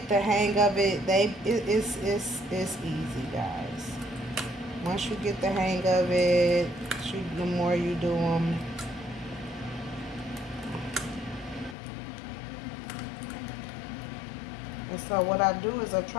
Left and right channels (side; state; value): right; drops out; at 11.8 s